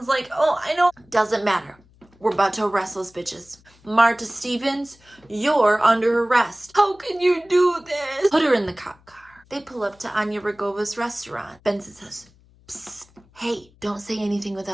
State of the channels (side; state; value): left; noise; hum, 29 dB below the sound